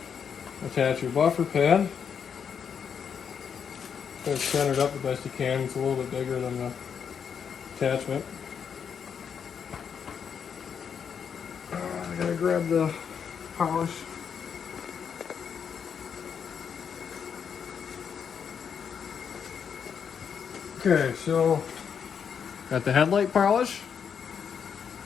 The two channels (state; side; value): quieter; right; 7.2 dB